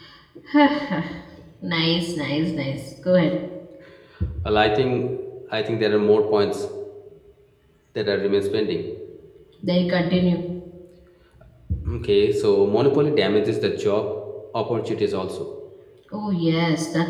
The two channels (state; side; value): identical; both; correlation 1.00